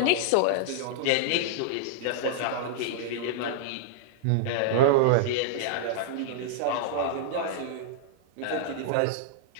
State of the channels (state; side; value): different; both; correlation -0.01